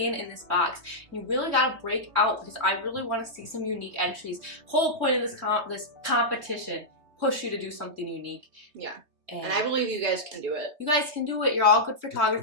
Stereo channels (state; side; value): late; left; 3.2 ms